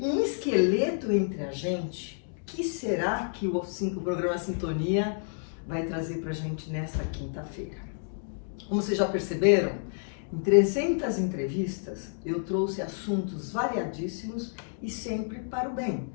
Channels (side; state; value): right; silent; digital silence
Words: um esqueleto entre a gente. O que será que o programa Sintonia vai trazer pra gente nesta quinta-feira? Como vocês já perceberam, em 300 entrevistas eu trouxe assuntos variadíssimos e sempre para o bem.